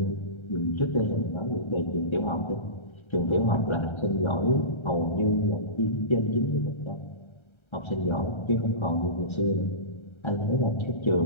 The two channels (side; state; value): right; late; 1.3 ms